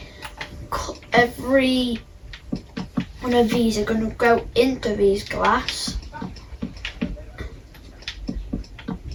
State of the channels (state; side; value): identical; both; correlation 1.00